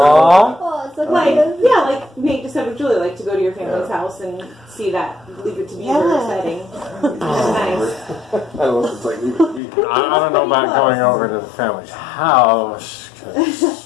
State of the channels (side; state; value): right; drops out; at 9.6 s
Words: Oh, it's okay. Nate just said with Julie, to go to your family's house and see that Leave It to Beaver setting. It's nice. I love it's like Leave It to Beaver. I don't know about going over to the family's house.